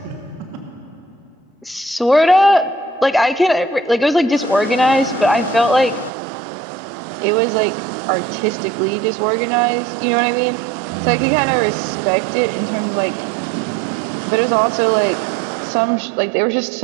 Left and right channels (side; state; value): left; drops out; at 6.1 s